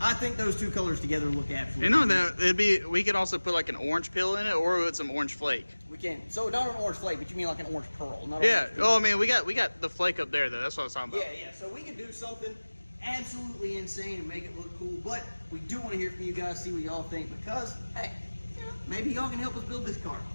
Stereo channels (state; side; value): inverted; both; correlation -1.00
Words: I think those two colors together look absolutely. And on that, we could also put like an orange peel in it, or with some orange flake. We can. So not an orange flake, but you mean like an orange pearl? Not Yeah. Oh, I mean, we got the flake up there though. That's what I was talking about. Yeah, yeah. So we can do something absolutely insane and make it look cool. But we do want to hear from you guys, see what y'all think, because hey, you know, maybe y'all can help us build this car.